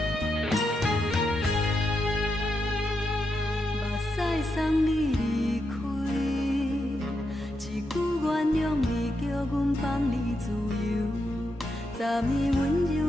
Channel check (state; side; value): normal; both; correlation 0.84